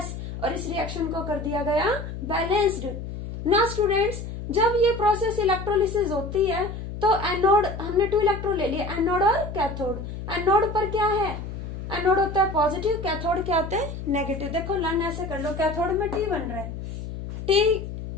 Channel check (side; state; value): left; noise; hum, 8 dB below the sound